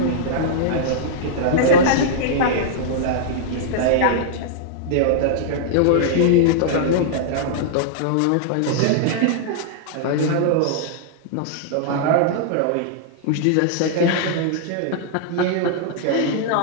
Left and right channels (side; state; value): both; different; correlation -0.01